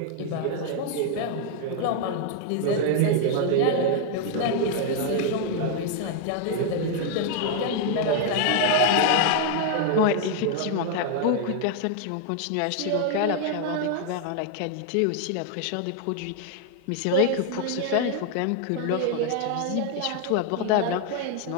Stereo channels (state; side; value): different; both; correlation 0.00